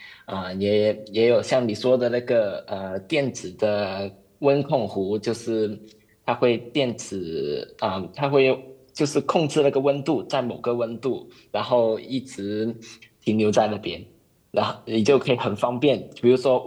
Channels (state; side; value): identical; both; correlation 1.00